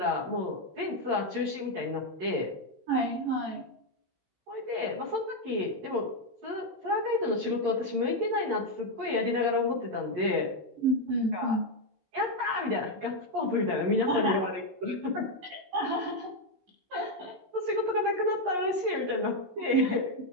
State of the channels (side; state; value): left; late; 16 ms